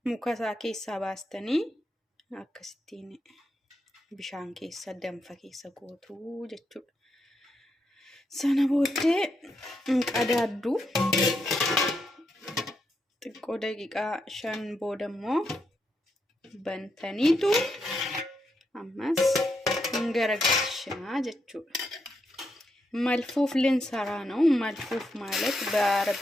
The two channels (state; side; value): normal; both; correlation 0.82